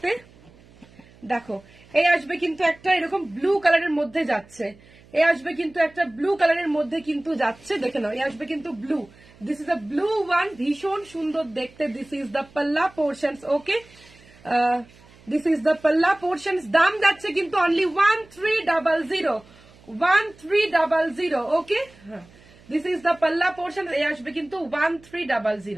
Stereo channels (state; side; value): noise; right; hum, 26 dB below the sound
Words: দেখো এ আসবে কিন্তু একটা এরকম ব্লু কালারের মধ্যে যাচ্ছে, এ আসবে কিন্তু একটা ব্লু কালারের মধ্যে কিন্তু যাচ্ছে, দেখে নাও এ আসবে কিন্তু blue. This is a blue one, ভীষণ সুন্দর দেখতে। This is the palla portions. Okay, this is the palla portions. দাম যাচ্ছে কিন্তু only 1300। Okay, this is the palla portion. এ আসবে কিন্তু